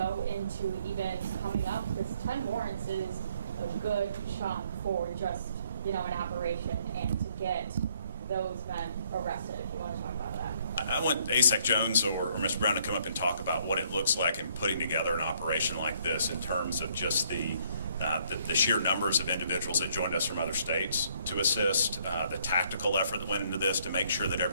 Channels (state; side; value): inverted; both; correlation -0.65